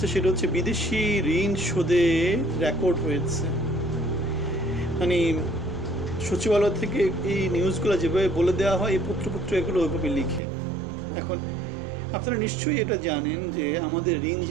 সেটা হচ্ছে বিদেশি ঋণ শোধে রেকর্ড হয়েছে। মানে সচিবালয় থেকে এই নিউজগুলো যেভাবে বলে দেওয়া হয়, এই পত্রপত্র এগুলো ওইভাবে লিখে। এখন আপনারা নিশ্চয়ই এটা জানেন যে আমাদের ঋণ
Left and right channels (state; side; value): drops out; left; at 10.4 s